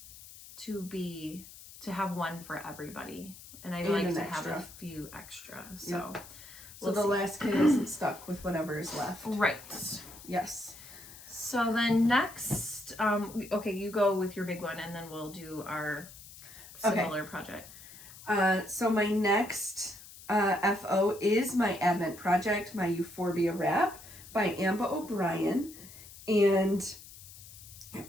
to have 1 for everybody. And I'd like to have a few extra. So, so the last kid isn't stuck with whatever is left. Right. Yes. So then next, okay, you go with your big one, and then we'll do our similar project. So my next FO is my Advent project, my Euphorbia wrap by Amba O'Brien. And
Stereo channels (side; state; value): left; noise; hiss, 17 dB below the sound